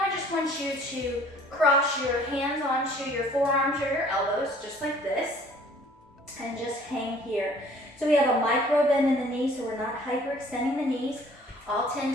I just want you to cross your hands onto your forearms or your elbows, just like this, and just hang here. So we have a micro bend in the knees, so we're not hyperextending the knees. All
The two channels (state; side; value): normal; both; correlation 0.54